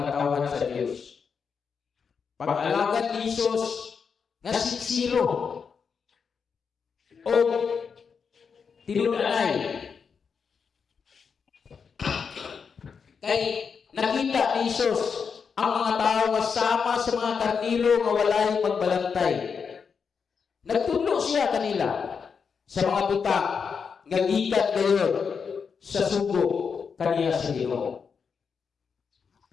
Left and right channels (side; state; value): right; quieter; 6.0 dB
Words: katawan sa Diyos. Pag-alagad ni Jesus nga siksiro o tinudanay kay nakita ni Jesus ang mga tao nga sama sa mga karniro nga walay magbalantay. Nagtudlo siya kanila sa mga butang nga gikan gayon sa sugo kaniya sa Ginoo.